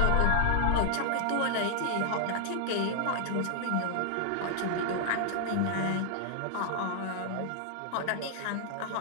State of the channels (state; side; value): different; both; correlation 0.00